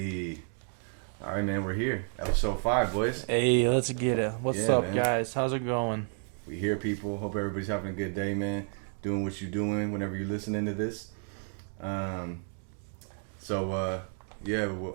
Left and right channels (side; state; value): left; silent; 57 dB below the other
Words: all right, man, we're here. Episode 5, boys. Hey, let's get it. What's Yeah, up, man. guys? How's it going? We here, people. Hope everybody's having a good day, man. Doing what you're doing whenever you're listening to this. Yeah,